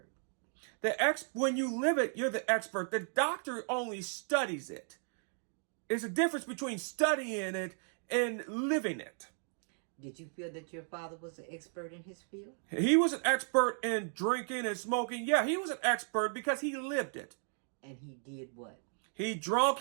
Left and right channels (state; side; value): silent; left; 54 dB below the other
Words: When you live it, you're the expert. The doctor only studies it. There's a difference between studying it and living it. Did you feel that your father was an expert in his field? He was an expert in drinking and smoking. Yeah, he was an expert because he lived it. And he did what? He drunk,